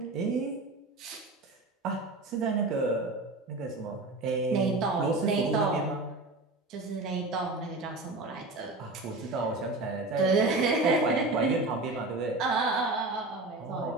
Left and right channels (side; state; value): left; quieter; 3.0 dB